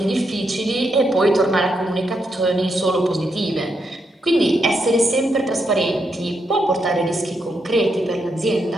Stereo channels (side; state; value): both; normal; correlation 0.81